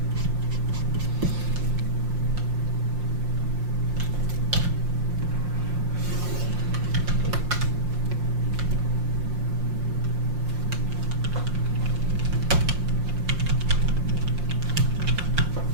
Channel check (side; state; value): left; late; 5.6 ms